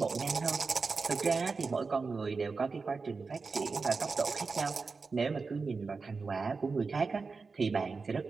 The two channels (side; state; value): left; quieter; 4.5 dB